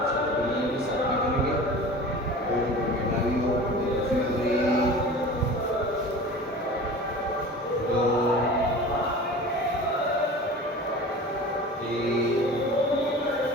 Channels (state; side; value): normal; both; correlation 0.38